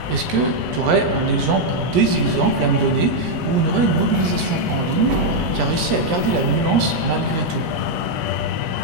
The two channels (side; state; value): left; late; 17 ms